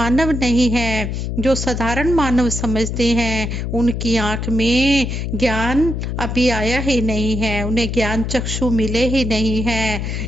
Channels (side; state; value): left; noise; hum, 3 dB below the sound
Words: नहीं है। जो साधारण मानव समझते हैं उनकी आंख में ज्ञान अभी आया ही नहीं है, उन्हें ज्ञान चक्षु मिले ही नहीं है।